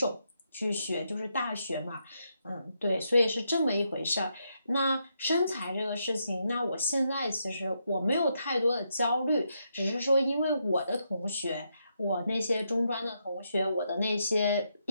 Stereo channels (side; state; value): both; inverted; correlation -0.80